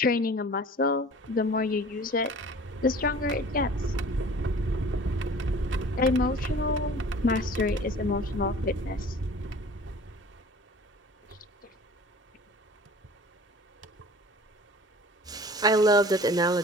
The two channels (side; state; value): both; normal; correlation 0.44